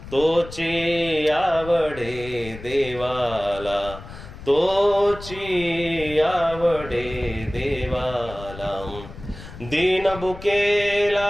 तोची आवडे देवाला, तोची आवडे देवाला.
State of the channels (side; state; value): left; noise; rumble, 14 dB below the sound